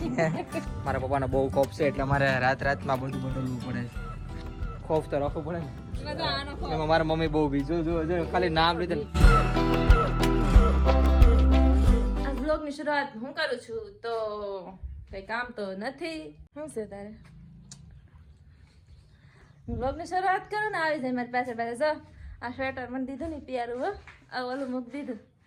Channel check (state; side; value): identical; both; correlation 1.00